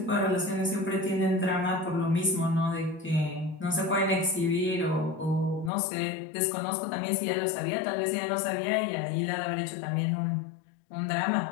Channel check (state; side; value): drops out; right; at 5.7 s